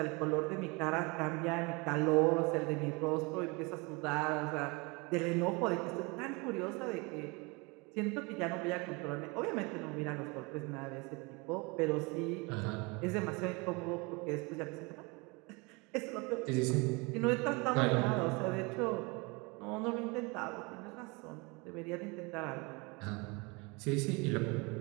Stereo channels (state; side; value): quieter; left; 27.7 dB